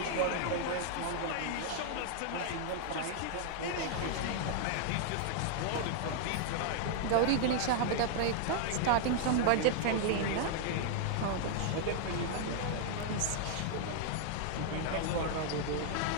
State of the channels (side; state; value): both; different; correlation 0.00